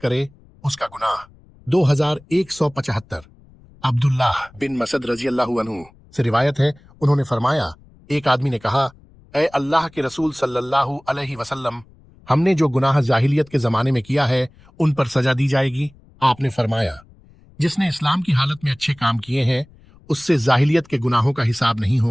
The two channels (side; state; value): left; noise; rumble, 27 dB below the sound